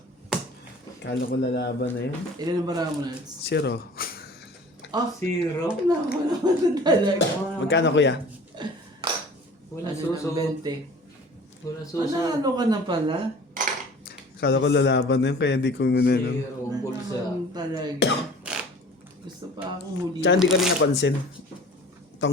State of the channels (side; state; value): both; normal; correlation 0.45